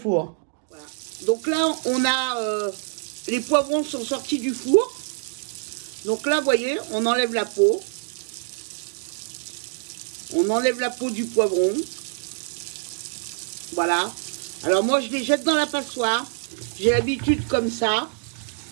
Voilà. Donc là, on a... les poivrons sont sortis du four. Donc là, vous voyez, on enlève la peau. On enlève la peau du poivron. Voilà. Alors moi, je les jette dans la passoire. J'ai l'habitude comme ça.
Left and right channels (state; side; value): silent; left; digital silence